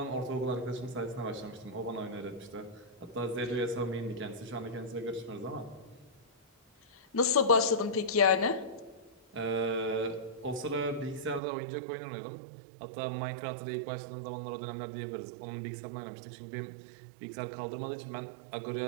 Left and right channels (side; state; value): left; drops out; at 11.4 s